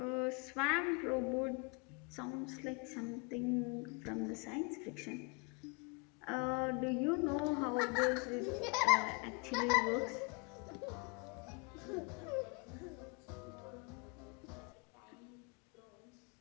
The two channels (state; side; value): quieter; right; 31.5 dB